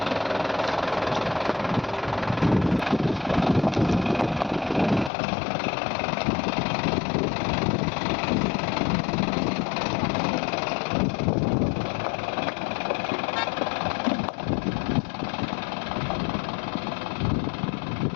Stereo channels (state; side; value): drops out; right; at 5.1 s